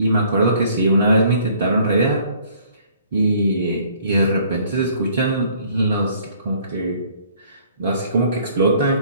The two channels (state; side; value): inverted; both; correlation -0.58